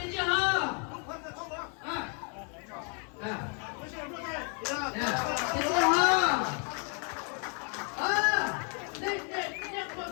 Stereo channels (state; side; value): quieter; right; 39.4 dB